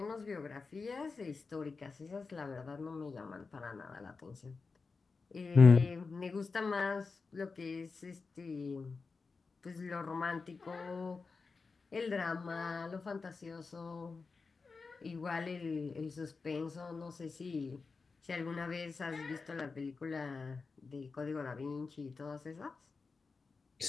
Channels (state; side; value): quieter; right; 4.5 dB